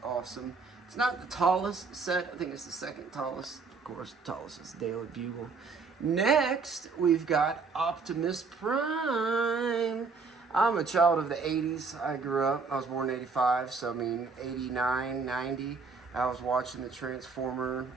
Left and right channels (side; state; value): left; quieter; 4.7 dB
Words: awesome. It's not the tallest set. I think it's the second tallest. Of course, the tallest is Daily Bugle. Next, we've got Optimus Prime. I'm a child of the 80s. I grew up, I was born in 85, so I mean 89, 90. I was watching the Transformer,